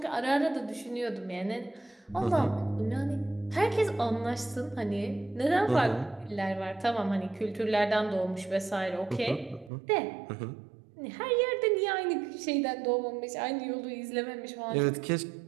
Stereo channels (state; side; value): drops out; left; at 9.7 s